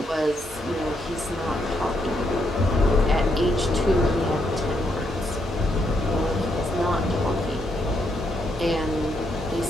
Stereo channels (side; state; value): both; normal; correlation 0.77